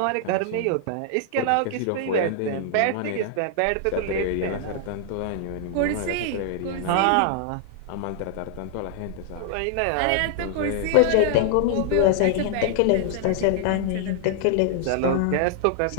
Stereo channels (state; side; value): different; both; correlation -0.01